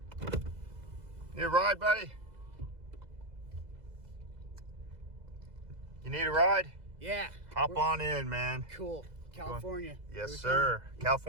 Need a ride, buddy? You need a ride? Yeah. Hop on in, man. Cool. California. Yes, sir.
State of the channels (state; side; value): late; left; 2.0 ms